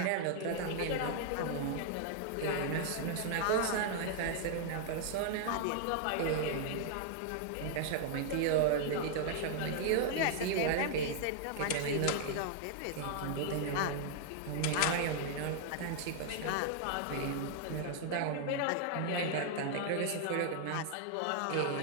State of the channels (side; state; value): both; different; correlation 0.00